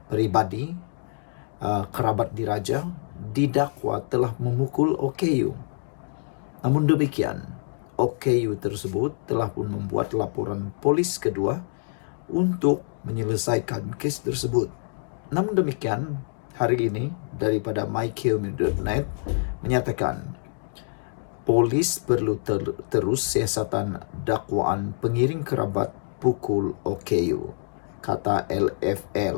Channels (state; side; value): silent; right; 61 dB below the other